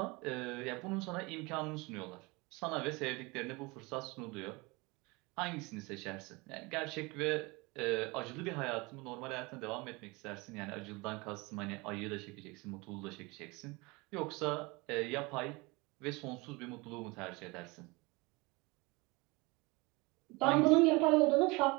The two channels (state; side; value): quieter; left; 25.4 dB